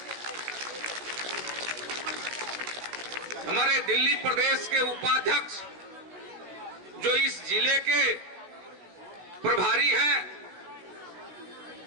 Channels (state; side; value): late; left; 16 ms